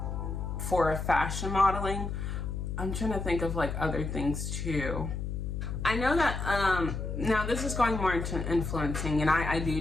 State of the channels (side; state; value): left; noise; hum, 4 dB below the sound